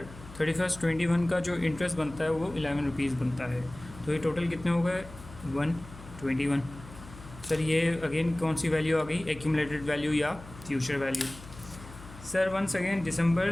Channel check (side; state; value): left; noise; hum, 17 dB below the sound